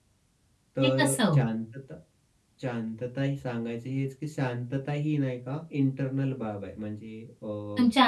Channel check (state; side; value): identical; both; correlation 1.00